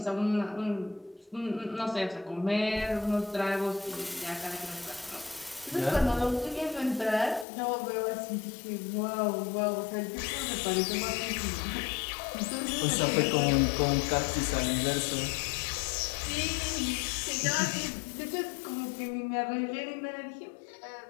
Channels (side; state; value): right; drops out; at 7.5 s